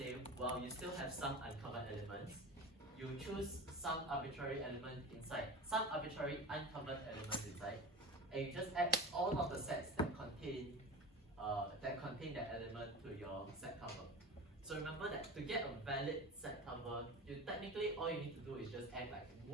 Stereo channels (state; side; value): normal; both; correlation 0.30